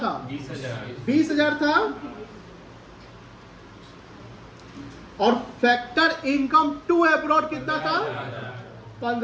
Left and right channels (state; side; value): identical; both; correlation 1.00